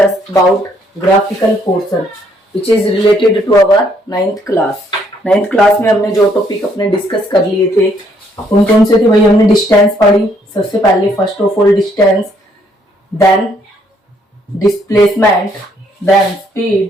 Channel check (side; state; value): both; normal; correlation 0.69